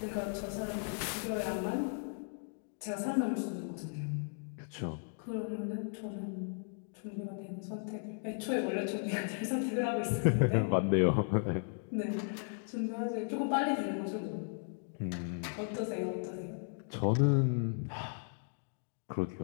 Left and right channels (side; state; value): right; silent; 54 dB below the other